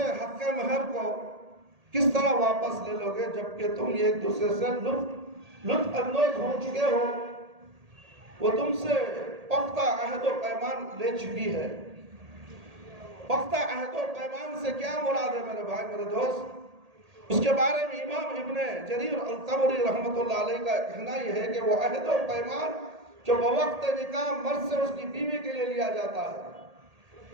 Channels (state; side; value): late; left; 1.8 ms